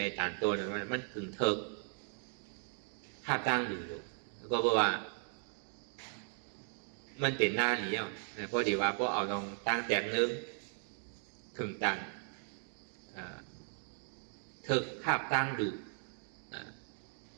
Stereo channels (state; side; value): silent; left; 53 dB below the other